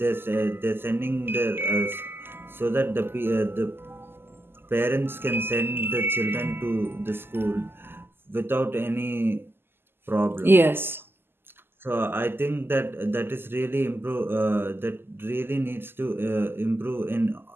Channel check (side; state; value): left; late; 0.11 ms